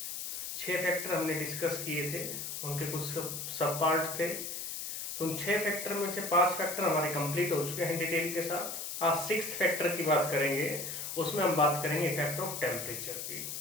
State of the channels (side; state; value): left; noise; hiss, 5 dB below the sound